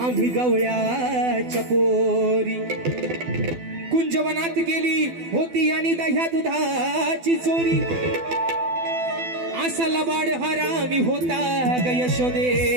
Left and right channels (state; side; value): late; left; 12 ms